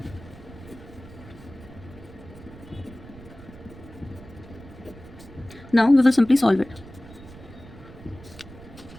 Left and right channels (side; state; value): right; noise; rumble, 17 dB below the sound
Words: Now we will simply solve it.